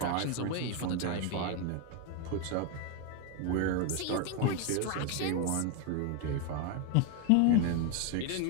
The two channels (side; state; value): both; different; correlation 0.01